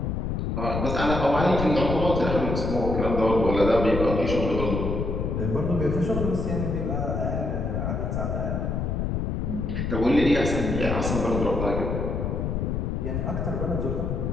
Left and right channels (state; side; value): noise; left; rumble, 1 dB below the sound